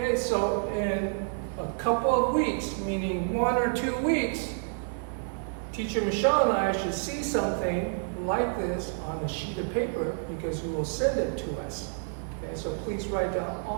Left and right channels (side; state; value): left; silent; digital silence